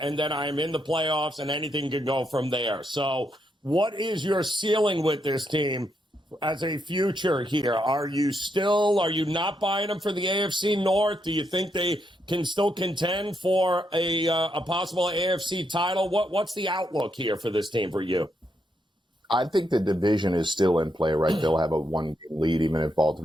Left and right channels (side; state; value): both; normal; correlation 0.80